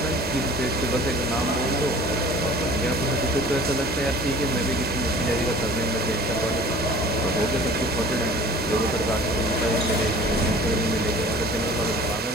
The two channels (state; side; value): normal; both; correlation 0.46